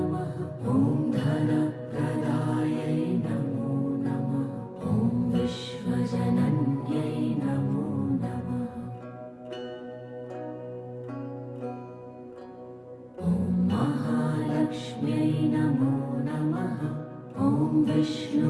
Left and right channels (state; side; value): identical; both; correlation 1.00